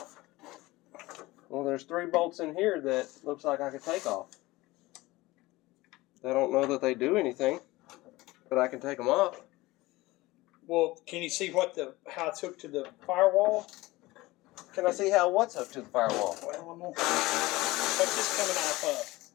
Well, there's 3 bolts in here that looks like I could take off. I don't know that they do anything, but I can take them off. Well, can you see how it's hooked to the firewall? Can I see how what's hooked to the firewall? Well, I'm gonna. What's this coming off of?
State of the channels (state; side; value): quieter; right; 19.9 dB